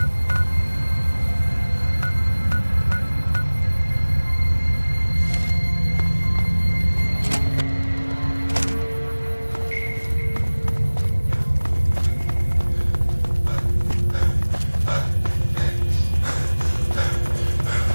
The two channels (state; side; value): inverted; both; correlation -1.00